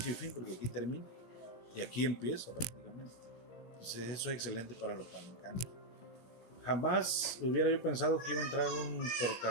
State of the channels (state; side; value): late; right; 17 ms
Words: y fin, porque aquí termina, y aquí empieza prácticamente. Entonces eso es excelente para los palencanos. Jamás hubiera yo pensado que iba a entrar un